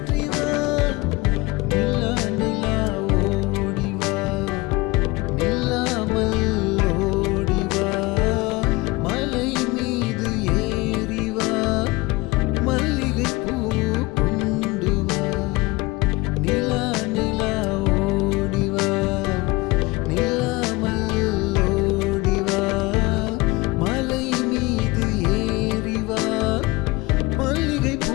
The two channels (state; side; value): quieter; right; 22.7 dB